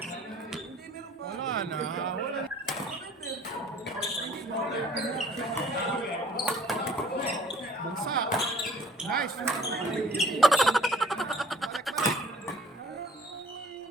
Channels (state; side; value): normal; both; correlation 0.53